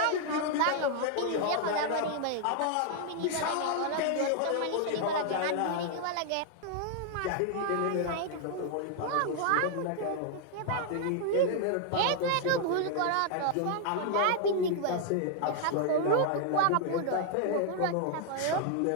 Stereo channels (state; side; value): different; both; correlation 0.00